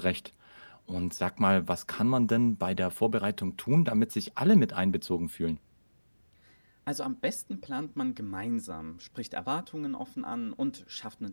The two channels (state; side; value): inverted; both; correlation -1.00